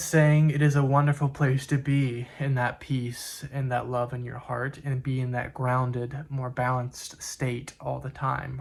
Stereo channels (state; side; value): identical; both; correlation 1.00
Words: saying it is a wonderful place to be, in that peace and that love in your heart, and be in that grounded, more balanced state all the